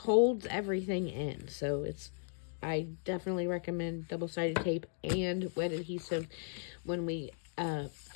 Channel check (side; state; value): right; silent; digital silence